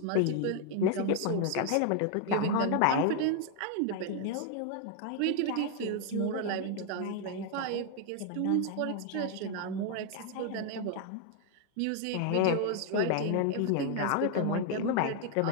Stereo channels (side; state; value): both; different; correlation 0.00